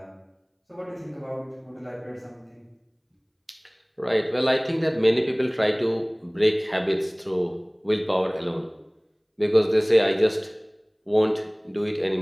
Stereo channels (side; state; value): both; identical; correlation 1.00